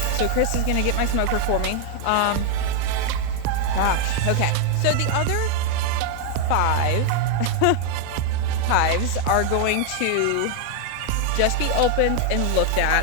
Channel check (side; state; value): both; different; correlation 0.00